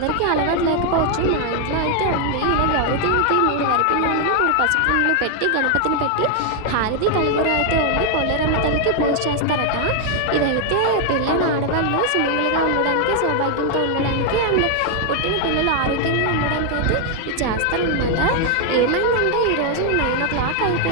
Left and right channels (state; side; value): different; both; correlation 0.00